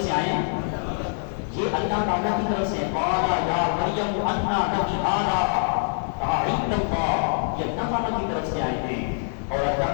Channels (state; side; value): silent; right; 62 dB below the other